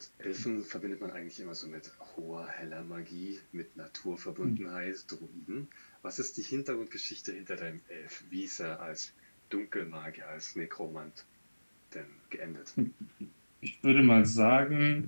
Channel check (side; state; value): both; inverted; correlation -1.00